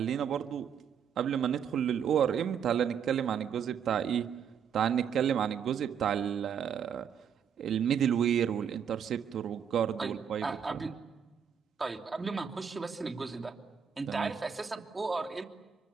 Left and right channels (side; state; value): left; quieter; 7.7 dB